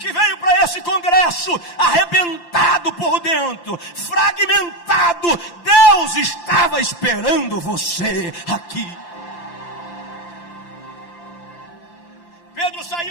veio para esse congresso arrebentado por dentro, fragmentado. Deus estava esperando você aqui. Pedro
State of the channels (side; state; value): right; late; 5.8 ms